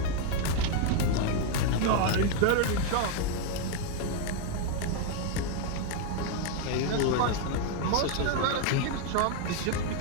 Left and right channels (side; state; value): both; different; correlation 0.01